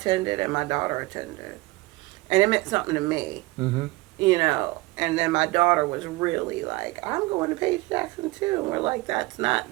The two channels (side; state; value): left; quieter; 21.0 dB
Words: and my daughter attended. And it meant something to me. You know, and then my daughter was really like, I'm going to Paige Jackson too. And we're like, that's